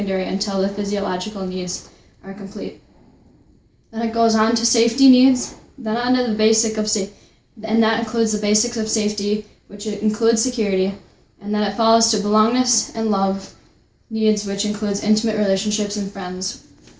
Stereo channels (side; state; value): both; identical; correlation 1.00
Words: until the physiological needs are complete. Then it goes on to safety needs, then on to the basic of safety, and that includes the basics of safety, which includes security, and then it follows to belongingness and love needs, which includes intimate relationships and friends.